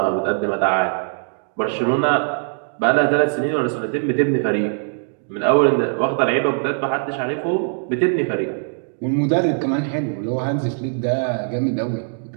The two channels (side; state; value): left; silent; digital silence